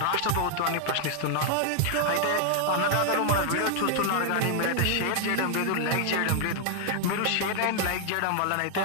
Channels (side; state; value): both; different; correlation 0.00